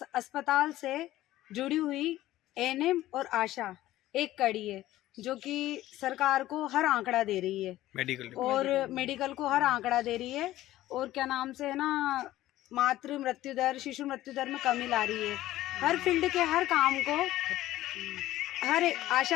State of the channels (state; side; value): quieter; right; 15.1 dB